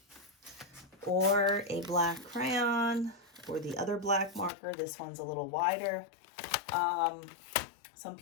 or a black crayon, or the other black marker. This one's a little wider. Some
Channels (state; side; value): drops out; right; at 4.5 s